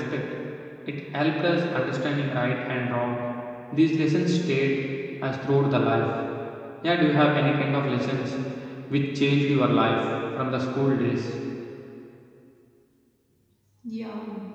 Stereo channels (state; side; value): identical; both; correlation 1.00